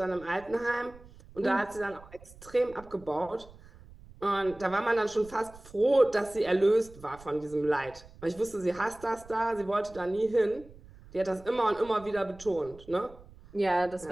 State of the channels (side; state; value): right; noise; rumble, 21 dB below the sound